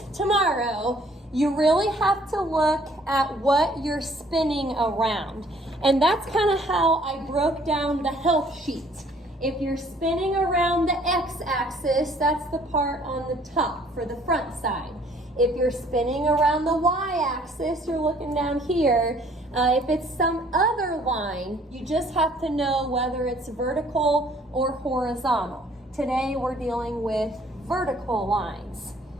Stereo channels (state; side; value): normal; both; correlation 0.59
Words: tomorrow, you really have to look at what you're spinning around. And that's kind of how I broke down the help sheet. If you're spinning around the x-axis, that's the part on the top for the front side. If you're spinning around the y-axis, you're looking down here. If it's some other line, you just have to know whether it's vertical or horizontal. Today we're dealing with vertical lines.